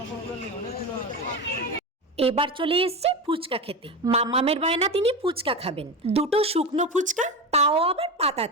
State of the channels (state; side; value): normal; both; correlation 0.21